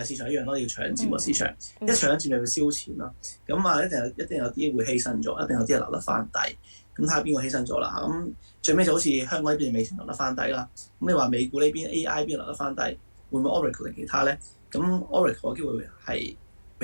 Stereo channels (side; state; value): both; inverted; correlation -1.00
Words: 市場一樣咯，要搶佔個市場，一搶佔就要燒錢咯。咁一定有啲會犧牲咗，一定有啲係留得翻底。咁睇下邊個犧牲咗啦？咁最尾就好似香港呢邊美團留得翻底啦。咁你話美股呢邊 AI 邊留得翻底，會唔會 Oracle 定其他咧？咁 Oracle 嘅機會係